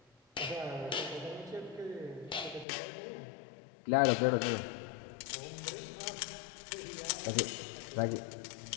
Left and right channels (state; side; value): drops out; right; at 2.7 s